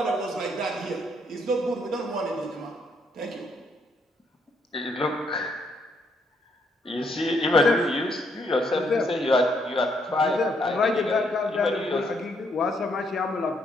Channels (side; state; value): both; normal; correlation 0.72